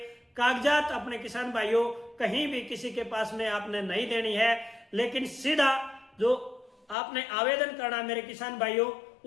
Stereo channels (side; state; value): right; drops out; at 7.0 s